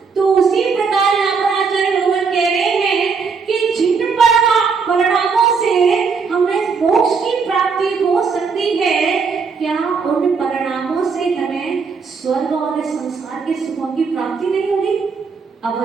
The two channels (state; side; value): quieter; left; 5.3 dB